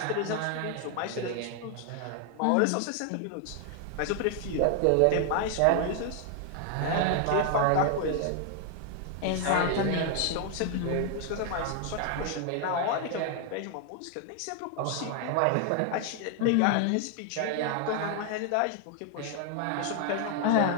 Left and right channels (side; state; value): both; different; correlation 0.00